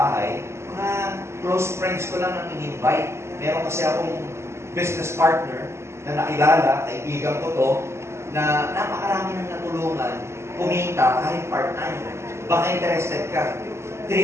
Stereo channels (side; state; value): left; late; 0.13 ms